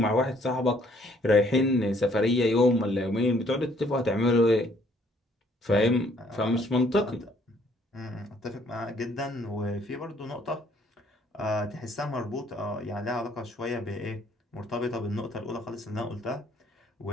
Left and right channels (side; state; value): both; normal; correlation 0.63